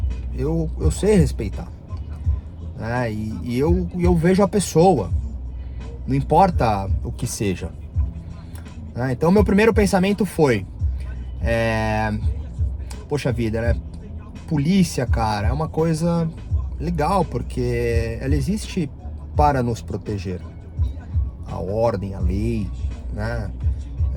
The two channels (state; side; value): identical; both; correlation 1.00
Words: Eu sei respeitar. E eu vejo a pessoa. Não importa o que seja. Então meu primeiro pensamento foi... poxa vida, né? Polícia, cara, é uma coisa legal, porque ela existe para nos proteger. A ordem, a lei, né?